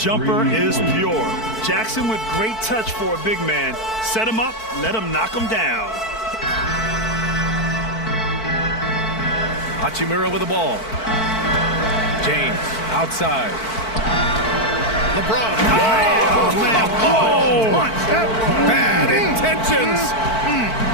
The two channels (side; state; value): right; late; 4.5 ms